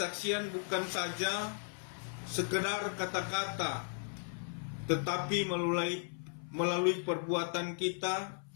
bukan saja sekedar kata-kata, tetapi melalui perbuatan kita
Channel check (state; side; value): silent; right; 54 dB below the other